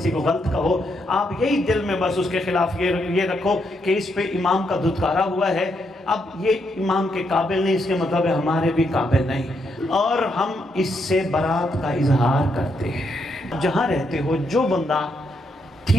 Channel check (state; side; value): normal; both; correlation 0.78